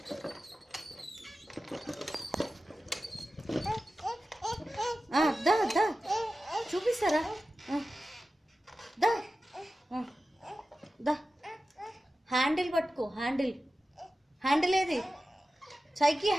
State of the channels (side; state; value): both; normal; correlation 0.94